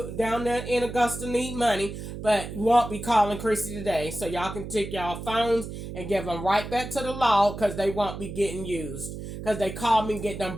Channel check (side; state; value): right; noise; hum, 9 dB below the sound